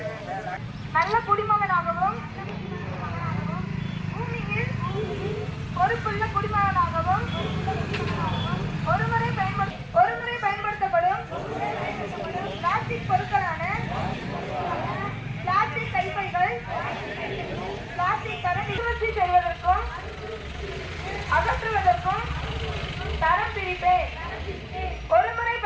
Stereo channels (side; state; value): both; identical; correlation 1.00